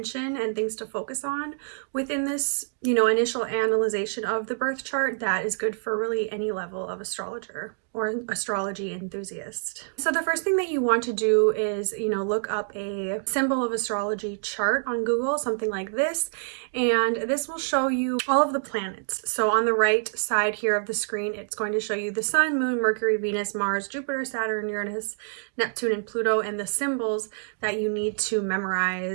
and things to focus on within this, initial analyzation of the birth chart that is good for really any level of astrologer or astrology enthusiast. So the first thing that you want to do is, look up a symbol of astrology chart on Google, something like this, and this will show you all of the planets. So on the right side here of the screen, it's going to show you the Sun, Moon, Mercury, Venus, Mars, Jupiter, Saturn, Uranus, Neptune, and Pluto, and the symbols that you need to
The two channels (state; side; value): silent; left; digital silence